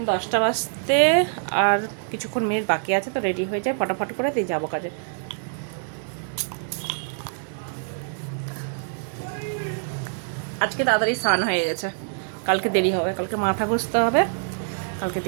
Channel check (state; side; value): silent; left; 56 dB below the other